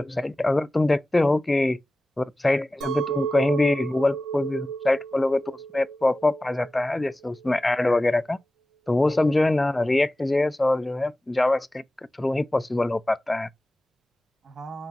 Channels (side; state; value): both; normal; correlation 0.96